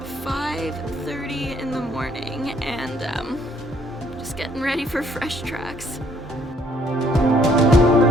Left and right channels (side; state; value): both; normal; correlation 0.65